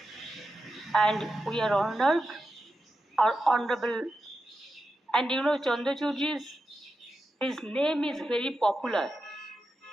and we are honored. Our honorable, and you know, Chandrachurji's, his name is very popular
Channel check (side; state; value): both; normal; correlation 0.89